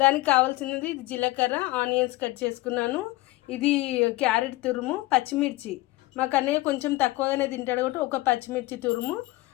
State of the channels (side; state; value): right; quieter; 19.5 dB